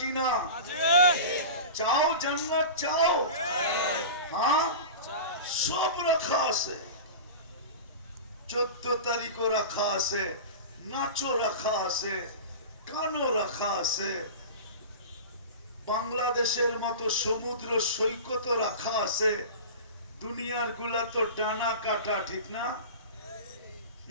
না? চাও জান্নাত? চাও? হ্যাঁ, সব রাখা আছে। 14 তারিখও রাখা আছে, নাচও রাখা আছে, গানও রাখা আছে, বাংলাদেশের মতো সমুদ্র সৈকতও রাখা আছে। দুনিয়ার গুলা তো ডানা কাটা, ঠিক না?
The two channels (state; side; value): inverted; both; correlation -0.31